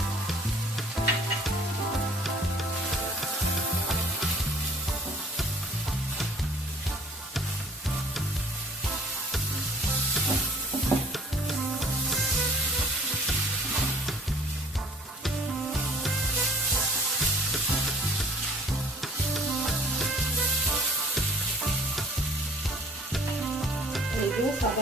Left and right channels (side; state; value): both; normal; correlation 0.53